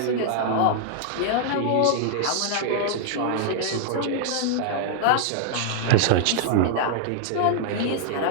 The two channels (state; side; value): different; both; correlation -0.01